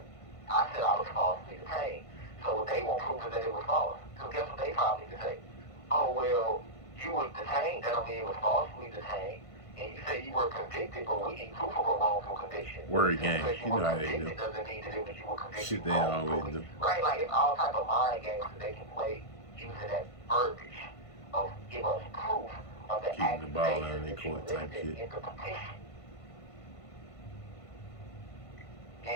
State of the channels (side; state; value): right; late; 1.5 ms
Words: I said I was falsely detained. So they won't prove that it was false. So guess what they probably need to say? Oh, well, you were detained, that don't mean it was falsely detained. And you say you were convicted, but we need proof of a wrongful conviction. Word game. Because You know how they do. doesn't mean that you were convicted. Shit they always do. Right? Like it's all type of mind games that they can play using that verbiage of give us proof of the Keeping the ball out of accusation their that you court type listed shit. in the petition.